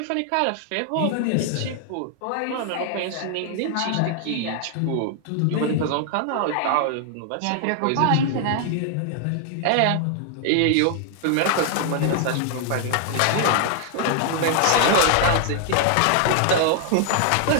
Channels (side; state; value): both; different; correlation 0.00